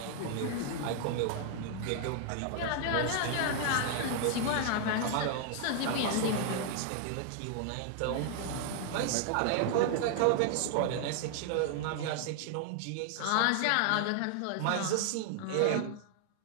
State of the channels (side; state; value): both; different; correlation 0.00